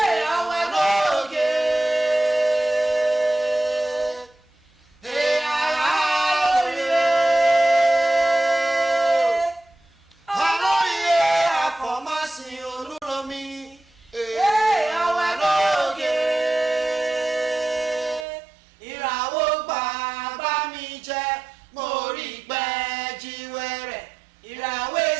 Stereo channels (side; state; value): left; drops out; at 18.2 s